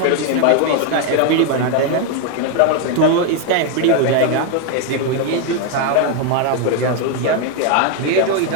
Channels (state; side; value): different; both; correlation 0.01